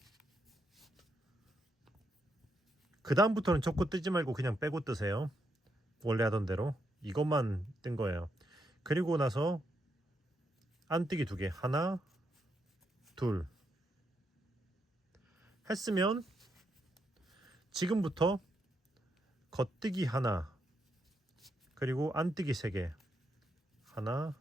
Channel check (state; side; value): normal; both; correlation 0.80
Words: 그 다음부터는 첫 코 뜨지 말고 그냥 빼고 뜨세요. 원래 하던 대로 이것만 뜬 거예요. 그리고 나서 안뜨기 2개, 하나 둘 했으면 지금부터 겉뜨기 하나, 그리고 안뜨기 3개, 하나